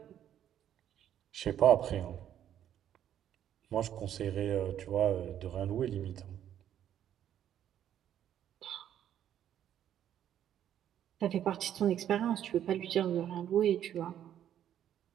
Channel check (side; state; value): left; quieter; 10.5 dB